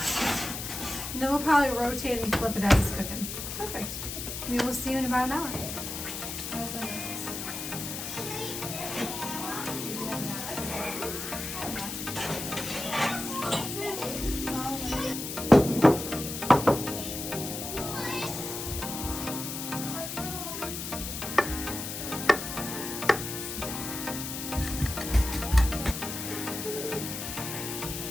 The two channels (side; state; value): left; noise; hiss, 6 dB below the sound